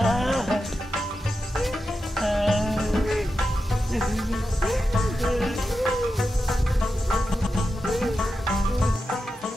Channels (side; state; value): both; normal; correlation 0.90